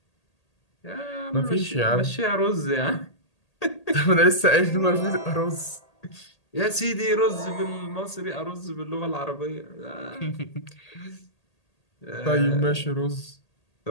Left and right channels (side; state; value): right; late; 1.8 ms